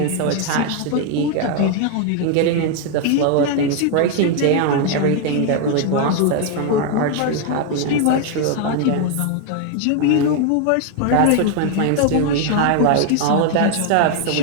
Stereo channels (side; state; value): both; different; correlation 0.00